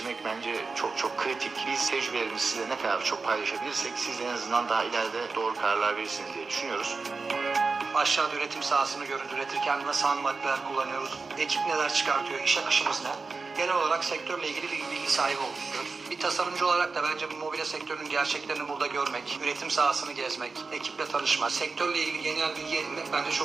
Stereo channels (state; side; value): quieter; left; 4.3 dB